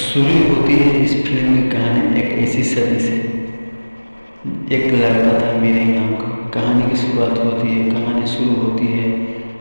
होती है इस फिल्म की कहानी एक ऐसी सदी से। एक लड़का था मिराई नाम का। कहानी की शुरुआत होती है, कहानी शुरू होती है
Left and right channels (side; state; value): both; inverted; correlation -1.00